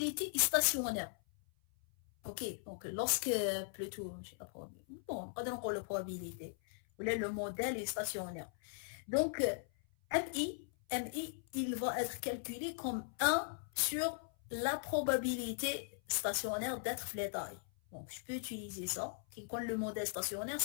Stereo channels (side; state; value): right; silent; 52 dB below the other